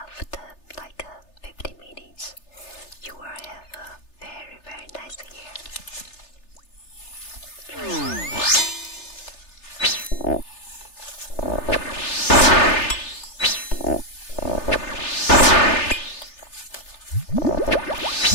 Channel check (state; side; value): late; right; 3.3 ms